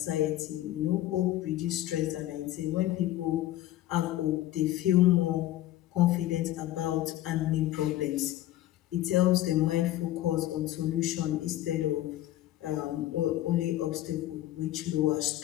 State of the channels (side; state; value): right; quieter; 14.4 dB